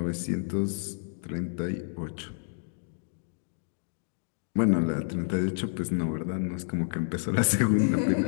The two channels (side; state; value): right; silent; digital silence